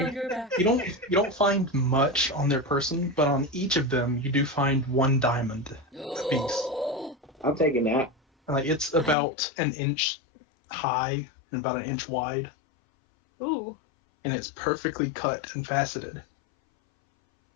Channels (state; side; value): drops out; right; at 9.2 s